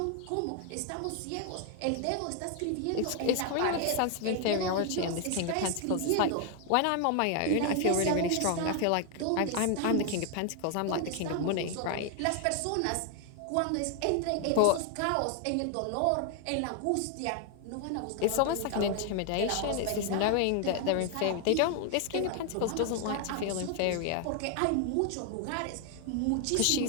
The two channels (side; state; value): both; different; correlation 0.00